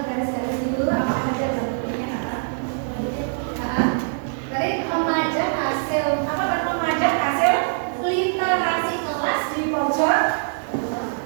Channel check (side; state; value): left; silent; 59 dB below the other